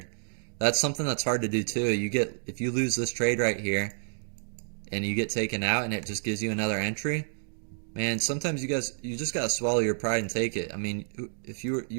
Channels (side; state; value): left; silent; digital silence